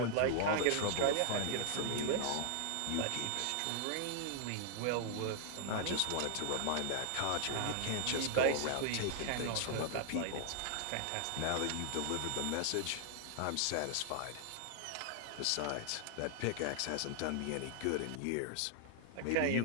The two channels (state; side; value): different; both; correlation 0.00